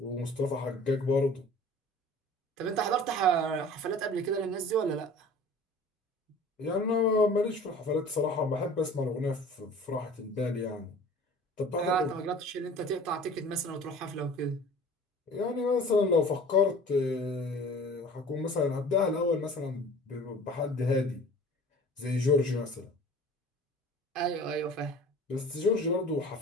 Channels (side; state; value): both; normal; correlation 0.44